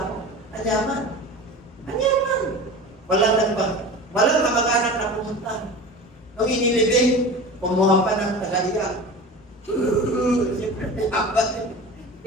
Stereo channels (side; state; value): both; normal; correlation 0.33